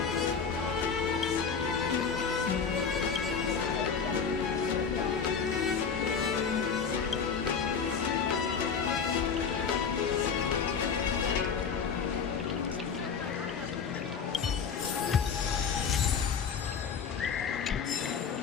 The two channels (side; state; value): right; quieter; 6.2 dB